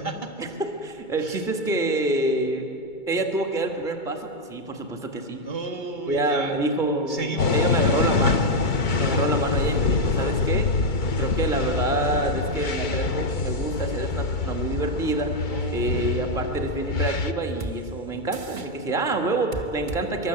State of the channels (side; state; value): right; late; 2.3 ms